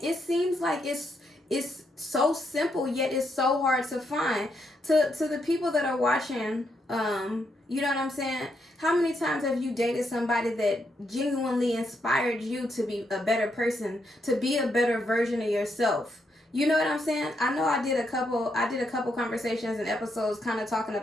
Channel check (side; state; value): both; normal; correlation 0.79